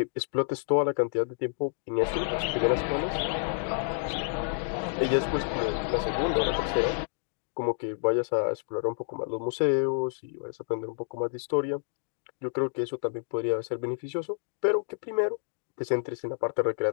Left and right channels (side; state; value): right; silent; digital silence